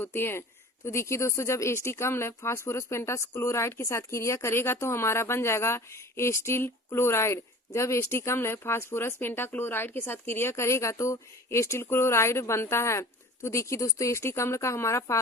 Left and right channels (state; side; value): normal; both; correlation 0.42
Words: है। तो देखिए दोस्तों, जब एस्टिक अम्ल फास्फोरस पेंटाक्लोराइड के साथ क्रिया करेगा तो हमारा बन जाएगा एस्टिल क्लोराइड। जब एस्टिक अम्ल फास्फोरस पेंटाक्लोराइड के साथ क्रिया करेगा तो एस्टिल क्लोराइड बनता है। तो देखिए दोस्तों, एस्टिक अम्ल का हमारा